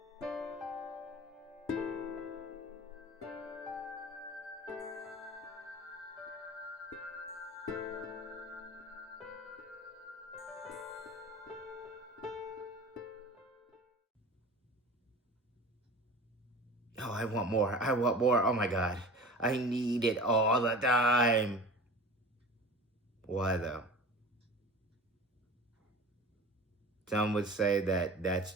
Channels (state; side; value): normal; both; correlation 0.37